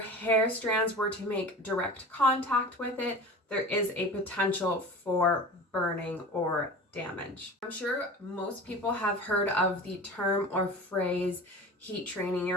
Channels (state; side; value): normal; both; correlation 0.35